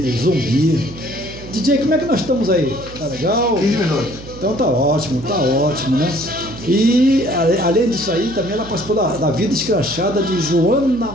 DJ, como é que nós estamos aí? Tá legal? 15 minutos. Então tá ótimo, né? E além disso aí, também ela participou da vida escrachada de Joana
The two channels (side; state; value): right; noise; hum, 16 dB below the sound